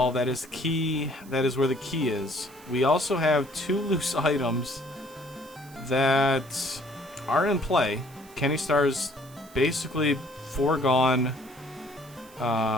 That is key. That is where the key is. We also have 2 loose items that are in play. Kennystarr's basically foregone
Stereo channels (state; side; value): noise; right; hiss, 23 dB below the sound